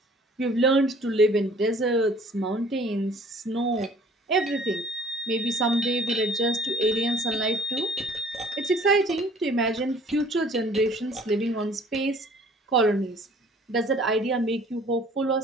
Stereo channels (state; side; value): normal; both; correlation 0.53